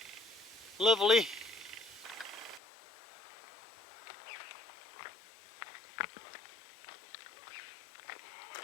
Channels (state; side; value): drops out; right; at 2.6 s